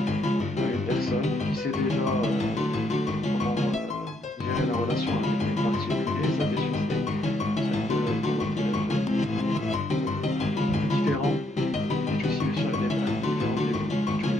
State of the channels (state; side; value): normal; both; correlation 0.74